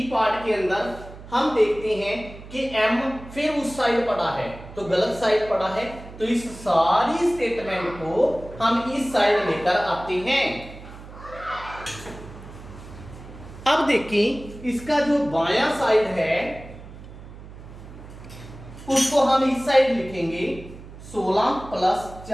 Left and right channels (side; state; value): right; noise; hum, 16 dB below the sound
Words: पार्ट के अंदर हम देखते हैं कि m फिर उस साइड पड़ा है तो गलत साइड पड़ा है, तो इस सारी स्टेटमेंट को हम इस साइड लेकर आते हैं। अब देखिए इसका जो बायां साइड है उसको हम इस साइड लिखेंगे, 16 प्लस